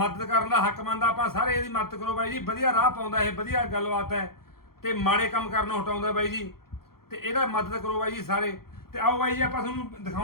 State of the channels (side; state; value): right; late; 0.94 ms